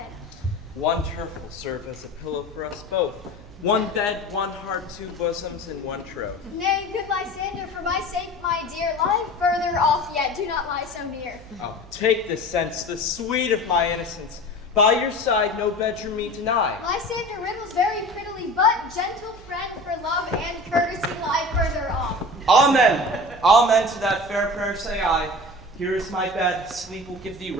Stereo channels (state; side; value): noise; right; hum, 20 dB below the sound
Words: One turf will serve as a pillow for us both. One bed, one heart, two bosoms, and one troth. Nay, good Lysander, for my sake, my dear, lie further off yet, do not lie so near. Oh, take this sense, the sweet of my innocence. By your side, no bedroom me deny. Lysander riddles very prettily, but gentle friend for love and courtesy lie further off. Amen. Amen to that fair prayer say I. Here is my bed, sleep will give thee